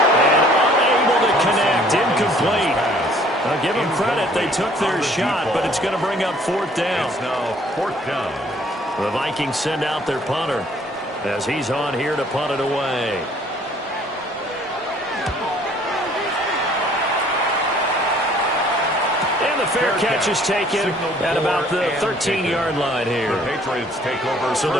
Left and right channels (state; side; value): normal; both; correlation 0.58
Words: And unable to connect. Incomplete. Now give them credit. They took their shot, but it's going to bring up 4th down. It's now 4th down. The Vikings send out their punter as he's on here to punt it away. And the fair catch is taken at about the 13-yard line here. The Patriots take over. So